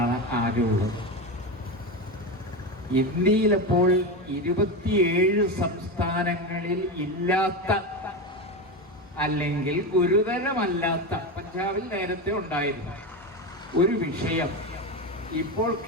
ആകെയുള്ളത്. ഇന്ത്യയിലപ്പോൾ 27 സംസ്ഥാനങ്ങളിൽ ഇല്ലാത്ത, അല്ലെങ്കിൽ ഗുരുതരമല്ലാത്ത, പഞ്ചാബിൽ നേരത്തെ ഉണ്ടായിരുന്നു ഒരു വിഷയം ഇപ്പോൾ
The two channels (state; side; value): normal; both; correlation 0.18